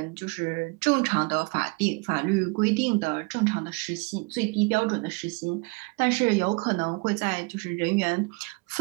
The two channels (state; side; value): quieter; left; 28.9 dB